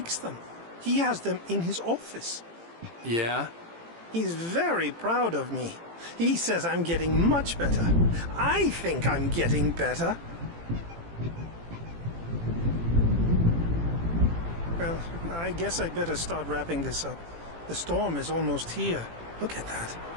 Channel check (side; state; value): left; late; 18 ms